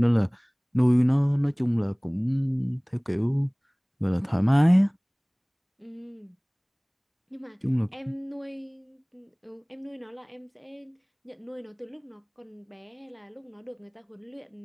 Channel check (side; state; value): both; identical; correlation 1.00